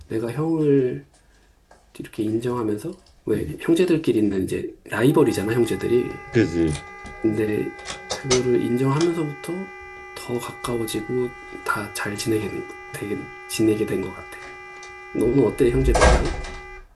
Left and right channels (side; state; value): both; identical; correlation 1.00